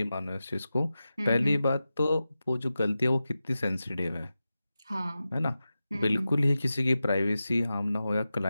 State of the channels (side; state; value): both; inverted; correlation -0.93